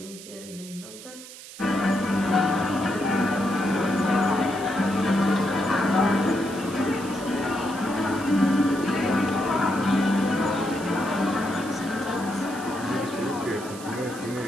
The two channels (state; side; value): noise; right; hiss, 15 dB below the sound